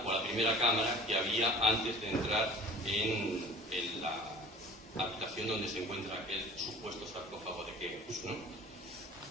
o la primera cámara que había antes de entrar en la habitación donde se encuentra aquel supuesto sarcófago de Keops, ¿no?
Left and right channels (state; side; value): normal; both; correlation 0.43